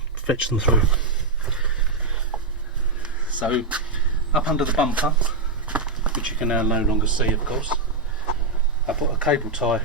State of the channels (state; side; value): quieter; left; 3.7 dB